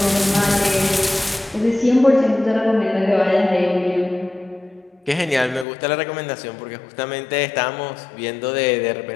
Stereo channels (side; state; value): right; drops out; at 5.7 s